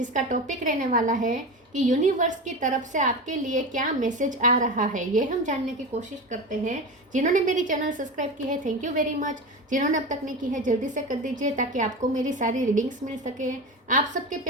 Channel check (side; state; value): both; normal; correlation 0.25